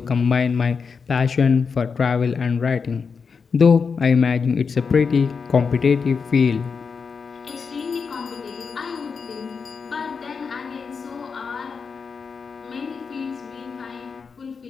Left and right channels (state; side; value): quieter; right; 5.5 dB